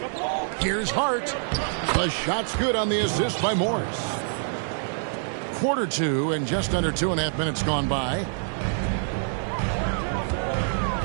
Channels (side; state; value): left; silent; digital silence